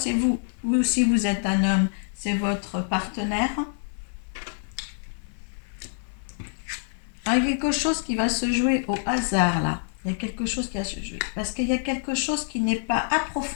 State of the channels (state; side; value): silent; right; 61 dB below the other